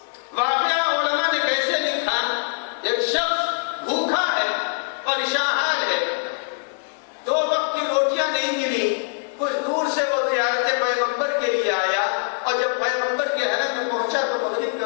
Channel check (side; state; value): right; silent; digital silence